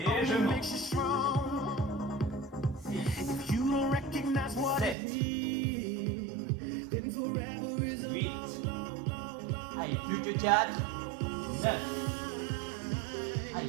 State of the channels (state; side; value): drops out; left; at 5.0 s